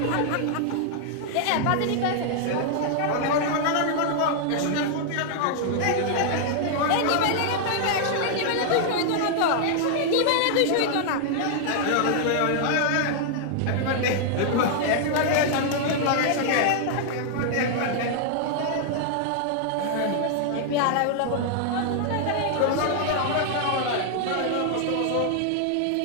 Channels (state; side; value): different; both; correlation -0.01